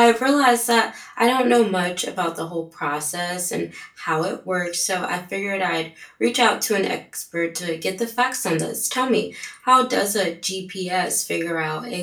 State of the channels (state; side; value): identical; both; correlation 1.00